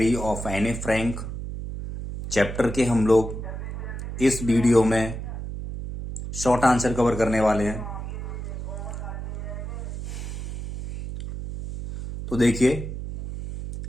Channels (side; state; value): right; noise; hum, 7 dB below the sound